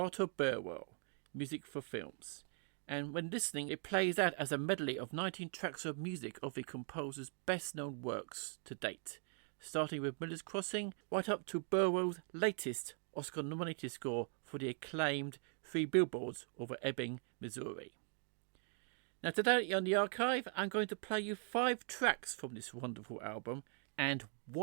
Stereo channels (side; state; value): left; silent; 50 dB below the other